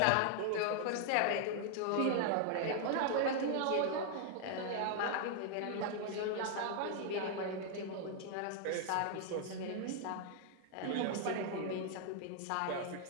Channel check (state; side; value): different; both; correlation 0.00